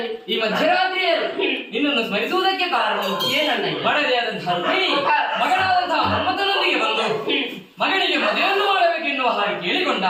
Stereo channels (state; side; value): identical; both; correlation 1.00